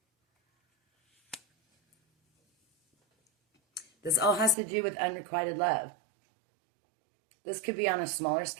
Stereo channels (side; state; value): left; drops out; at 4.5 s